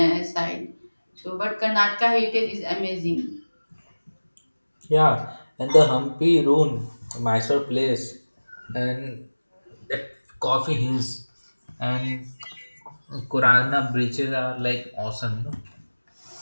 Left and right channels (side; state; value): both; inverted; correlation -1.00